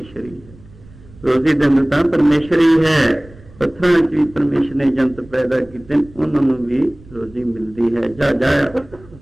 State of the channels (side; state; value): right; noise; rumble, 23 dB below the sound